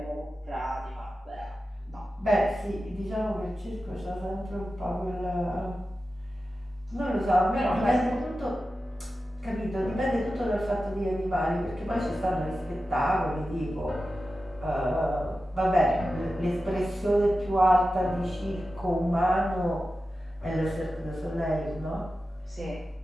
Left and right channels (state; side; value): normal; both; correlation 0.93